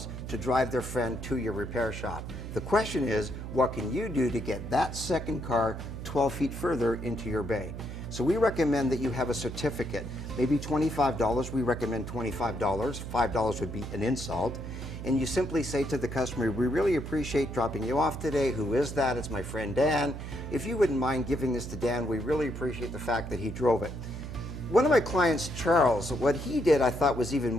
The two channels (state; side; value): noise; right; hum, 8 dB below the sound